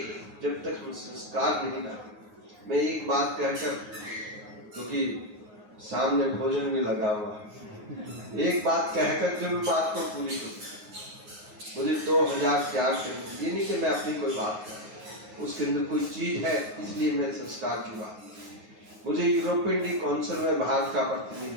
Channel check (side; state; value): left; late; 9.5 ms